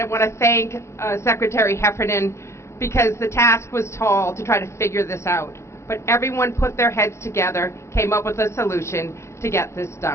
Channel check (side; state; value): right; late; 0.13 ms